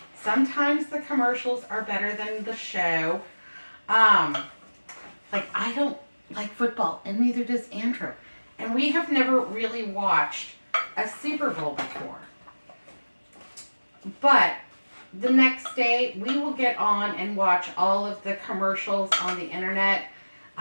Sometimes the commercials are better than the show. Like, I don't like football, and neither does Andrew. And we have never really watched a Super Bowl before. But the next day, we will get on and watch all of the commercials on the internet.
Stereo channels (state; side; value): inverted; both; correlation -1.00